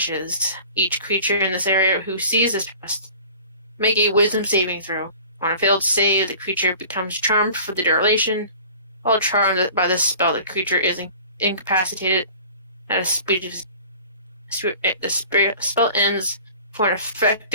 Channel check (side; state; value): both; inverted; correlation -0.45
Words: Each creature in this area who sees this past make a wisdom saving throw. On a failed save, the creature becomes charmed for the duration. While charmed by this spell, the creature is incapacitated at a speed of the spell ends for an